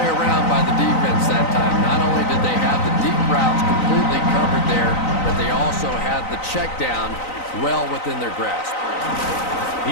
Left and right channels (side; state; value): right; late; 3.9 ms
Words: around by the defense that time. Not only did they have the deep routes completely covered there, but they also had the check down well within their grasp.